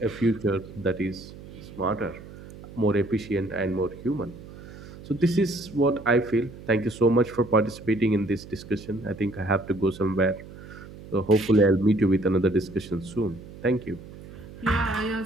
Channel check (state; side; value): noise; right; hum, 16 dB below the sound